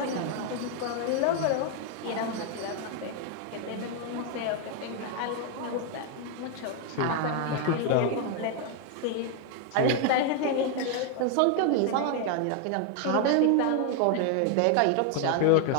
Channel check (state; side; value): different; both; correlation 0.01